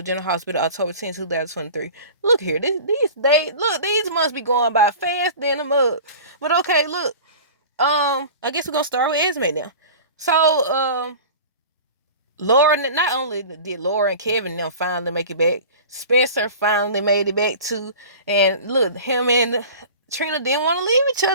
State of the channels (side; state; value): both; inverted; correlation -0.38